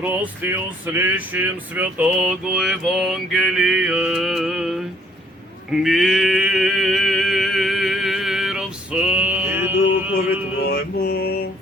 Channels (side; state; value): both; normal; correlation 0.63